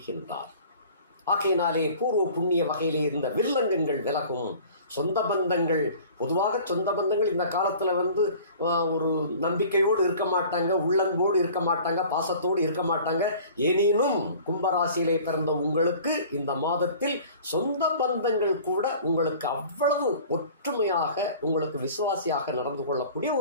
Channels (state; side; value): inverted; both; correlation -0.46